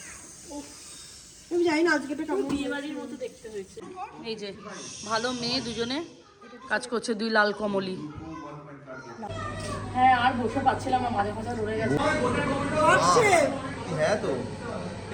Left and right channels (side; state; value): both; identical; correlation 1.00